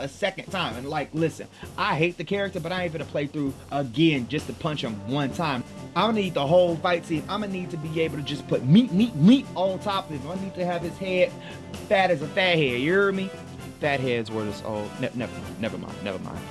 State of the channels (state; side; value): identical; both; correlation 1.00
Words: second time. And like, listen, I hate the character, but I ain't gonna play through again just to punch him one time. I'm gonna need the whole fight scene. I'm gonna need to be able to just put meat on top of him. I need to have his head fat as a fat head, you hear me? Fat heads were this old. Never mind.